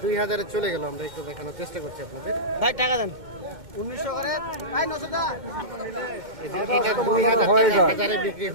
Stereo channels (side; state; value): left; late; 2.1 ms